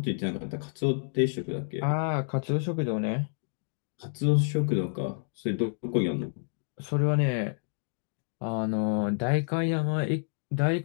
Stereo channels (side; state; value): right; silent; digital silence